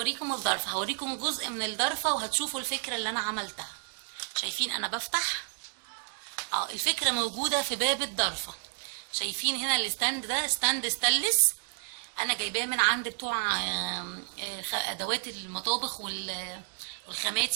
الضرفه، هوريكم جزء من الضرفه وهتشوفوا الفكره اللي انا عملتها. شايفين انا بفتح الفكره موجوده في باب الضرفه. شايفين هنا الستاند ده ستاند ستانلس، انا جايباه من عند بتوع ادوات المطابخ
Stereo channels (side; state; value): left; silent; digital silence